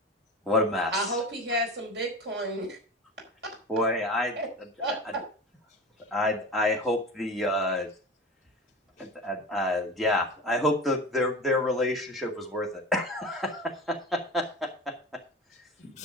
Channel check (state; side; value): normal; both; correlation 0.31